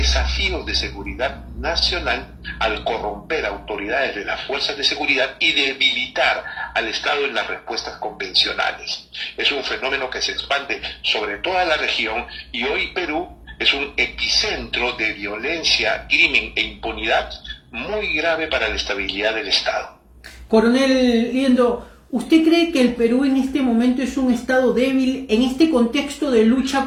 de seguridad nacional al corromper autoridades de las fuerzas de seguridad y debilitar al Estado en las respuestas convencionales. Es un fenómeno que se expande sobre toda la región, y hoy Perú es un epicentro de violencia, crimen e impunidad muy grave para la estabilidad del Estado. Coronel Liendo, ¿usted cree que el Perú en este momento es un estado débil en este contexto de lucha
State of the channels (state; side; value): identical; both; correlation 1.00